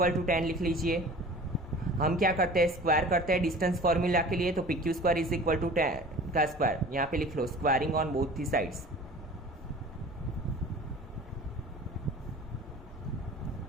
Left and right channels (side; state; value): both; normal; correlation 0.42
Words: टू 10 लिख लीजिए। हम क्या करते हैं? स्क्वायर करते हैं डिस्टेंस फॉर्मूला के लिए, तो PQ square is equal to 10 का स्क्वायर। यहाँ पे लिख लो, squaring on both the sides.